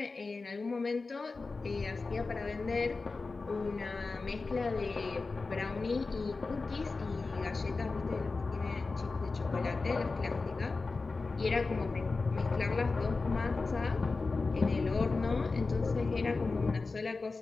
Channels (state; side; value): quieter; right; 3.9 dB